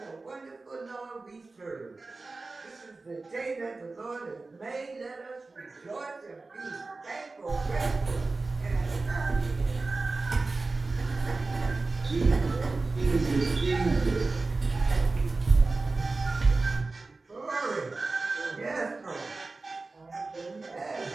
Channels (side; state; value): left; quieter; 3.6 dB